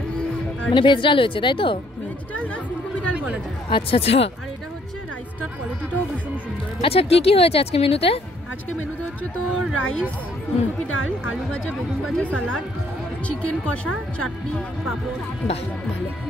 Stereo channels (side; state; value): both; normal; correlation 0.66